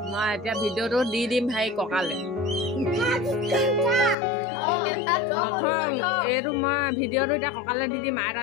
মই এতিয়া ভিডিঅ'টো দি দিম ভাই ককালে নথং এইটো মই ভিডিঅ'টো এতিয়া ককালে দি দিম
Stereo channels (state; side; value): drops out; right; at 4.2 s